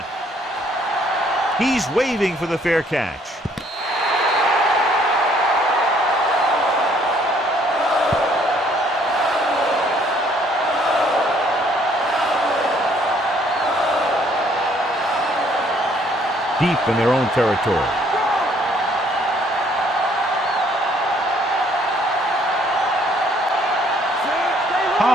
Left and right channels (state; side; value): normal; both; correlation 0.63